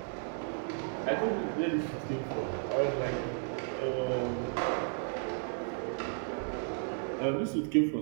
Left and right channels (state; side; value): silent; left; 55 dB below the other